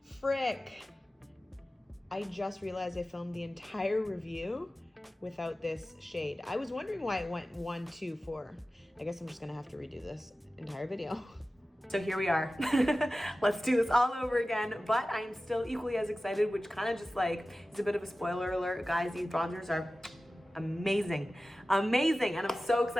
frick. I just realized I filmed the entire review without this shade. I was wondering why it went 1, 2, 4. I guess I'm just gonna have to redo this entire video. So here we are. Let's do this all over again, but I am still equally as excited, which kind of just like is a bit of a spoiler alert. Guys, these bronzers are amazing, amazing, and I'm so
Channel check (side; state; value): both; normal; correlation 0.95